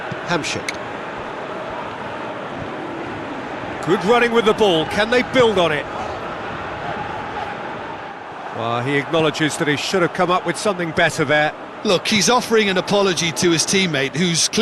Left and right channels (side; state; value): both; identical; correlation 1.00